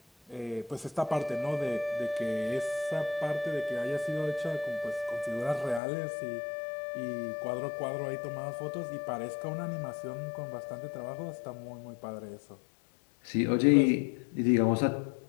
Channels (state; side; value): drops out; right; at 5.8 s